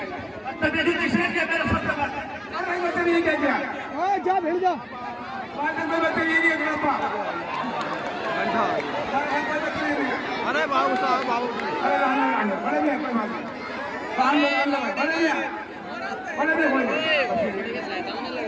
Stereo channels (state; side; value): identical; both; correlation 1.00